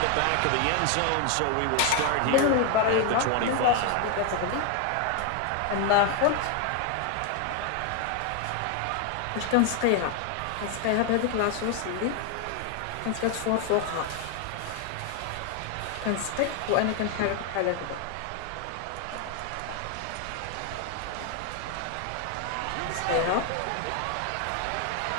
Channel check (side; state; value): both; different; correlation 0.01